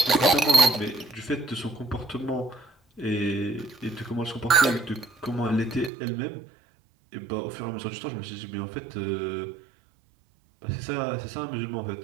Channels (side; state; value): left; drops out; at 5.9 s